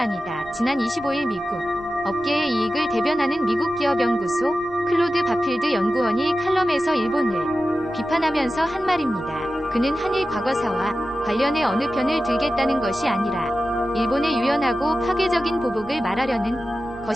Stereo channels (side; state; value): left; noise; rumble, 22 dB below the sound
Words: 아니다. 지난 25일 미국 업계의 이익을 대변하는 미국 기업연구소 클로드 바필드 연구원이 칼럼에서 일본을 비판하면서 한 말입니다. 그는 한일 과거사와 관련해 어느 편을 들겠다는 것이 아니라 일본의 유연하고 파괴적인 보복을 말하려는